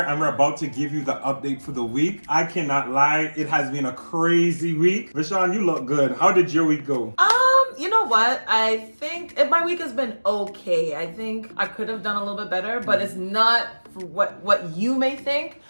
and we're about to give you the update for the week. I cannot lie, it has been a crazy week. Vishaun, you look good. How did your week go? You know what? I think my week has been okay. I think I could have done a little bit better, but it's not what you may think.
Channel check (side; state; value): both; inverted; correlation -1.00